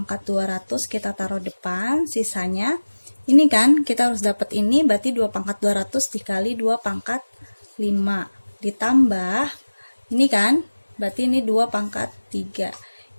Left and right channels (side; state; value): both; inverted; correlation -1.00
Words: 200 kita taruh depan, sisanya ini kan kita harus dapat ini, berarti 2 pangkat 200 dikali 2 pangkat 5 ditambah ini kan, berarti ini 2 pangkat 3.